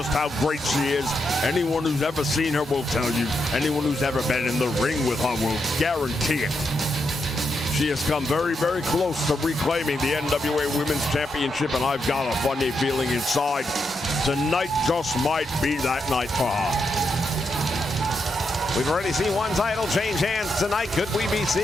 how great she is. Anyone who's ever seen her will tell you. Anyone who's ever been in the ring with her will guarantee it. She has come very, very close to reclaiming the NWA Women's Championship, and I've got a funny feeling inside tonight just might be that night for her. We've already seen one title change hands tonight. Could we be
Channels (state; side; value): normal; both; correlation 0.83